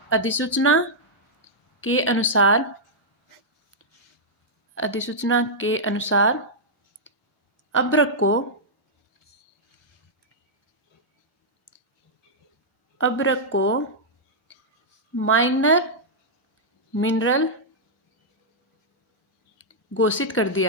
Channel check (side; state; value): both; normal; correlation -0.08